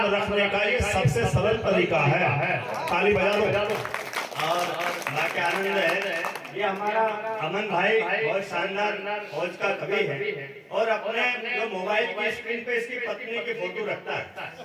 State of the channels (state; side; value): identical; both; correlation 1.00